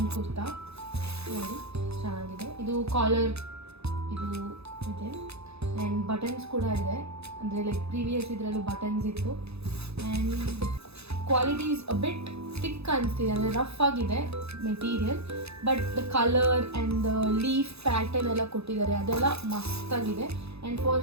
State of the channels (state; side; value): late; left; 0.79 ms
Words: ಕುರ್ತಾ ನೋಡಿ, ಚೆನ್ನಾಗಿದೆ. ಇದು ಕಾಲರ್ ಇದು ಇದೆ ಆ್ಯಂಡ್ ಬಟನ್ಸ್ ಕೂಡ ಇದೆ, ಅಂದರೆ ಲೈಕ್ ಪ್ರೀವಿಯಸ್ ಇದರಲ್ಲೂ ಬಟನ್ಸ್ ಇತ್ತು. And quality is a bit thick ಅನಿಸ್ತಿದೆ, ಅಂದರೆ ರಫ್ ಆಗಿದೆ material, but the colour and the leaf pattern ಎಲ್ಲ ಕೊಟ್ಟಿದ್ದಾರೆ, ಅದೆಲ್ಲ ಮಸ್ತಾಗಿದೆ. And for